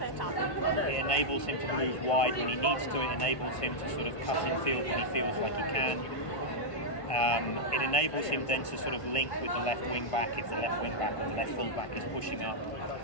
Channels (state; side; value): late; right; 1.5 ms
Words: It enables him to move wide when he needs to. It enables him to sort of cut in field when he feels like he can. It enables him then to sort of link with the left wing back if the left wing back or the left full back is pushing up.